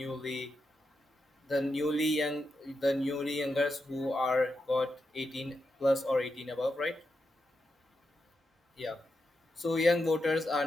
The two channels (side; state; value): both; normal; correlation 0.86